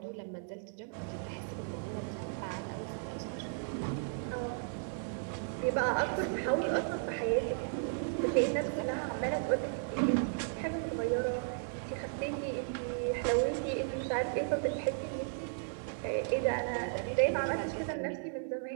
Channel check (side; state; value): left; silent; 54 dB below the other